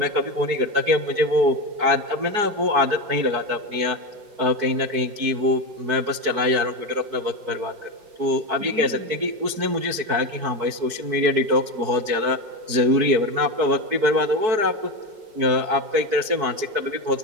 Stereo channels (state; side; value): late; left; 4.7 ms